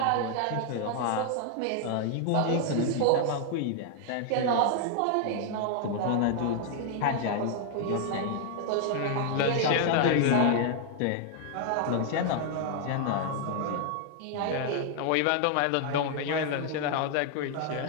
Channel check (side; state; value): both; different; correlation 0.00